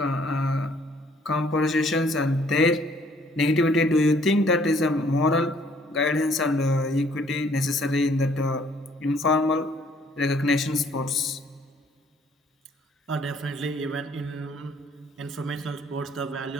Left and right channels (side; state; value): both; normal; correlation 0.62